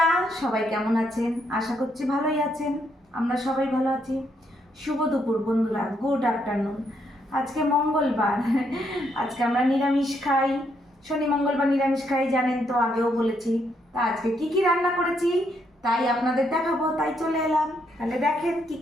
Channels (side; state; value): both; normal; correlation 0.75